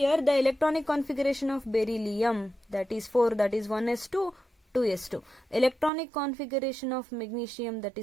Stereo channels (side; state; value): left; drops out; at 5.9 s